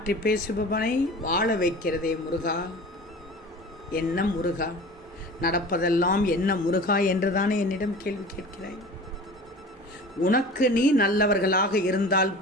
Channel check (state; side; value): normal; both; correlation 0.39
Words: பேசுபவனை வாழ வைக்கிறதே முருகா. என்ன முருகா, நடப்பதெல்லாம் என்ன முருகா என்றுதானே என்னிடம் கேள்வி கேட்கிறாய். உனக்கு நீ நல்லவர்களாக இருந்தால்